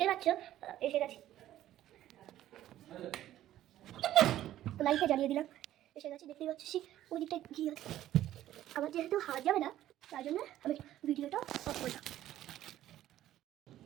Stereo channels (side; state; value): left; quieter; 13.1 dB